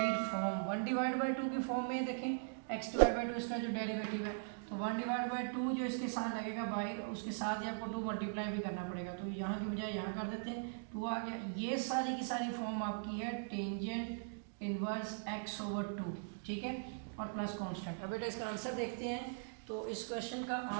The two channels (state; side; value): silent; left; digital silence